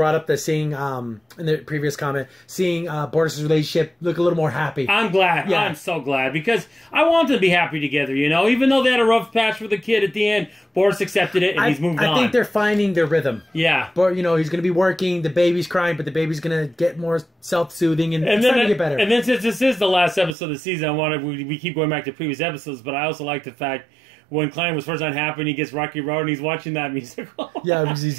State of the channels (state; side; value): drops out; left; at 20.3 s